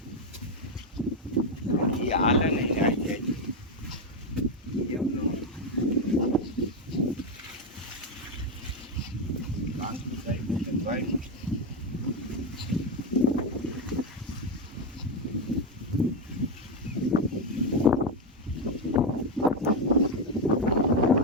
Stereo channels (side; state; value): both; normal; correlation 0.08